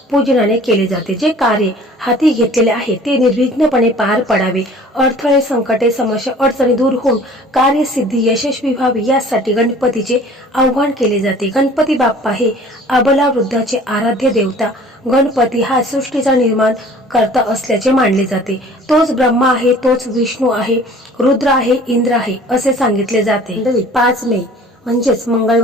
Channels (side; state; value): both; normal; correlation 0.49